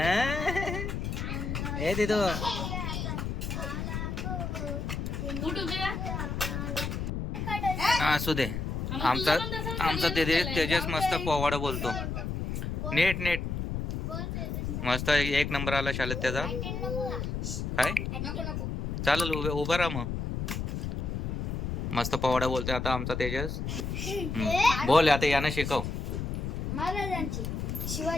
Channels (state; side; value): noise; left; rumble, 3 dB below the sound